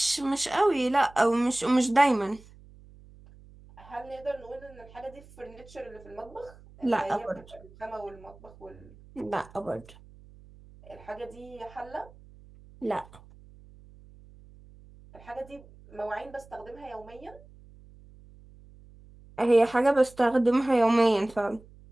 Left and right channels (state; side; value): noise; right; hum, 23 dB below the sound